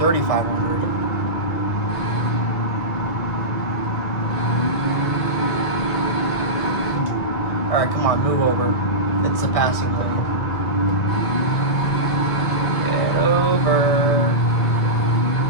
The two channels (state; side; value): late; right; 1.9 ms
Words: Alright, come on, move over. It's the passing lane. Get over.